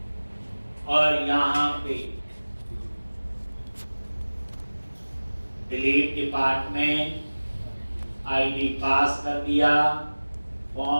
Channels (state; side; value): inverted; both; correlation -1.00